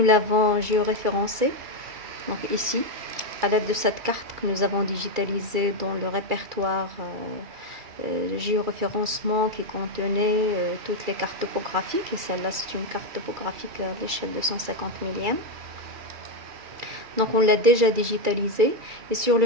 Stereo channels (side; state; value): left; late; 2.3 ms